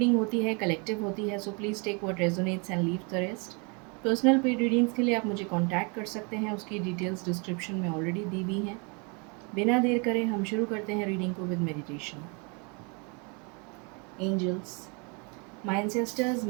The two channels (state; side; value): quieter; left; 32.8 dB